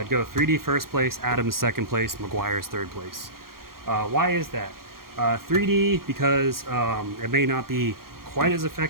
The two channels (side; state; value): left; late; 0.92 ms